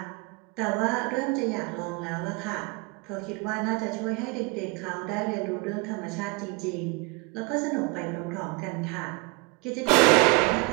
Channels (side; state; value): left; quieter; 28.2 dB